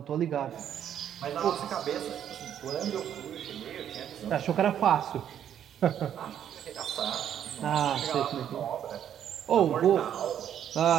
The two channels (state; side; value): quieter; left; 9.8 dB